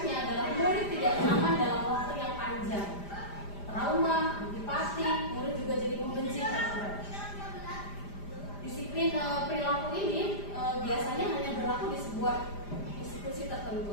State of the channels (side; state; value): right; late; 5.0 ms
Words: adalah murid tidak nyaman dalam waktu yang panjang, trauma, antipati, murid juga jadi membenci peraturan. Disiplin perilaku ini biasanya hanya berlaku di sebuah institusi